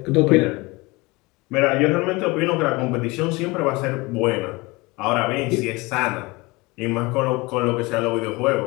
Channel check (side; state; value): right; quieter; 23.8 dB